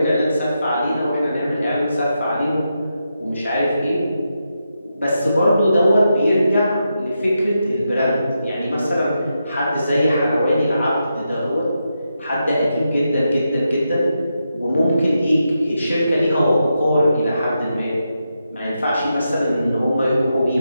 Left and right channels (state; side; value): inverted; both; correlation -0.86